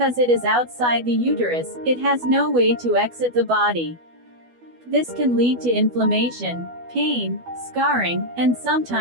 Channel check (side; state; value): left; late; 12 ms